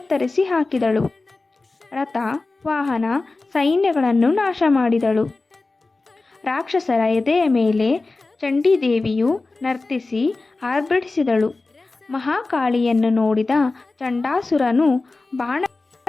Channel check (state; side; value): quieter; right; 3.5 dB